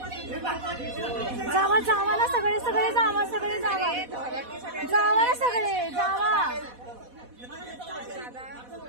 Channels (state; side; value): late; left; 4.1 ms